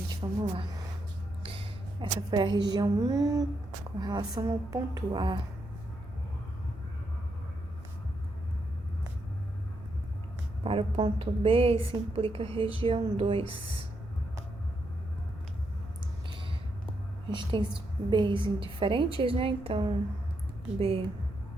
vamos lá. Essa foi a região 1 com relação ao ponto A. Para o ponto B, isso implica região 2. A gente tem B's diferentes, né? Então, B1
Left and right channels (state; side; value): noise; right; rumble, 16 dB below the sound